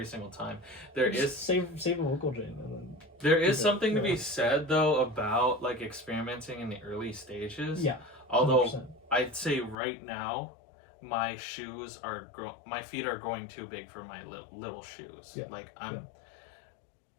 single time. Save a vocal chain and then there is something to be said though about like experimenting in the early stages. Although 100%. I'd say right now, my shoes are my feet are growing too big for my little shoes. Like I'm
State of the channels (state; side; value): drops out; right; at 9.8 s